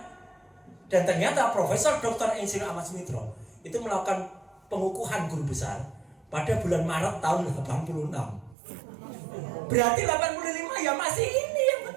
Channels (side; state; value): left; drops out; at 8.6 s